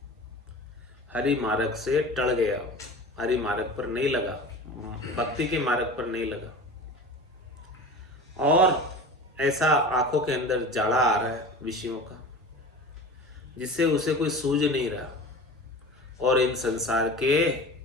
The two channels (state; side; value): normal; both; correlation 0.35